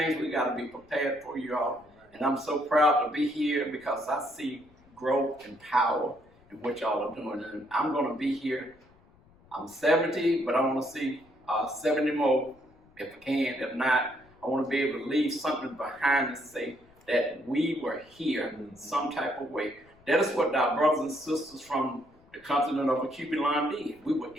we got to be prepared for, y'all. And I'm so proud to be here because I see growth and power in what y'all are doing. And I'm going to be here. I'm 70, but I want to see 70 more if I can. If not, I want to be able to leave something behind and say that we were here in some type of way. That is what our brothers and sisters from the continent of the Cuban line did. We were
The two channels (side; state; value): left; noise; rumble, 29 dB below the sound